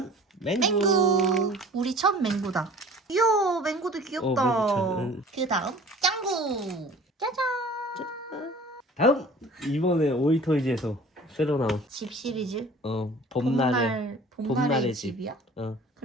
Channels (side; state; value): both; normal; correlation 0.46